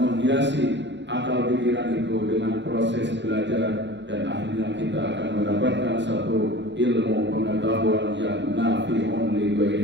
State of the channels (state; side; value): late; left; 0.52 ms